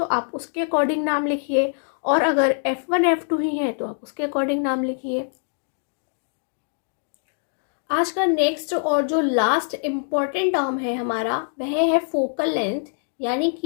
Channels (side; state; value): right; silent; digital silence